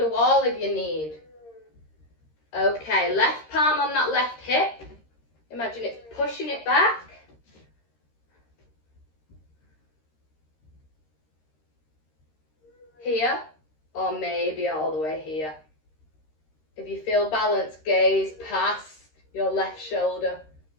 a wall if you need. Okay, left palm on that left hip. Imagine it's pushing it back. Here, or maybe all the way here. If you feel balanced, gaze past your left shoulder,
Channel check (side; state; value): right; late; 13 ms